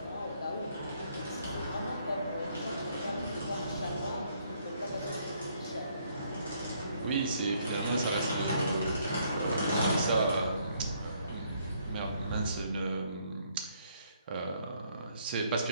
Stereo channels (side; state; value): both; inverted; correlation -0.69